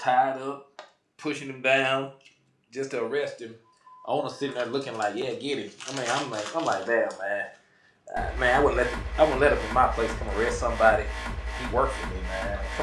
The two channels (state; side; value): identical; both; correlation 1.00